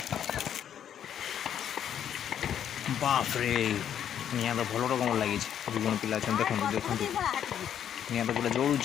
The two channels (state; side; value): quieter; right; 9.5 dB